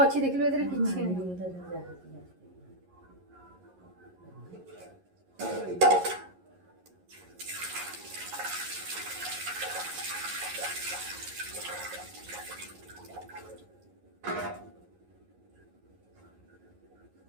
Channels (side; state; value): left; late; 11 ms